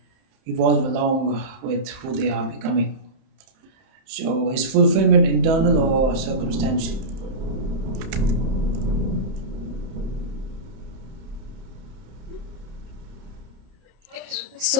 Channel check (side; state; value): left; late; 31 ms